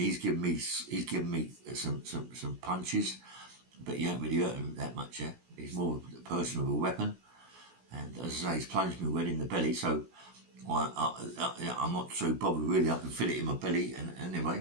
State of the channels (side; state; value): left; late; 16 ms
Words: given me some punches, but he ain't really hurt him that much. Yeah. He's more a person with a weapon, and as I say, he's plunged me well in the belly, so I'm not so bothered really. I can feel it in my belly, and anyway,